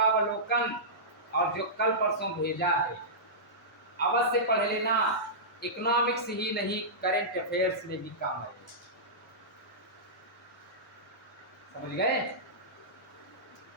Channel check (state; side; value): normal; both; correlation -0.16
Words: और जो कल परसों भेजा है अवश्य पढ़ लेना। इकोनॉमिक्स ही नहीं, करंट अफेयर्स में भी काम है। समझ गए?